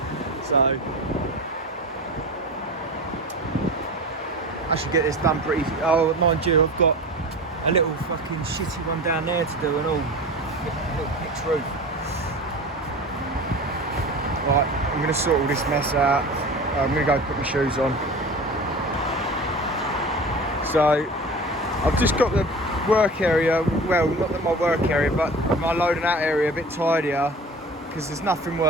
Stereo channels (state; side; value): normal; both; correlation 0.35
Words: So I should get this done pretty. Oh, mind you, I've got a little fucking shitty one down there to do and all. A little pitch roof. Right, I'm going to sort all this mess out. I'm going to go put my shoes on. So I've just got the work area, well, not my work area, but my loading out area a bit tidier, because there's nothing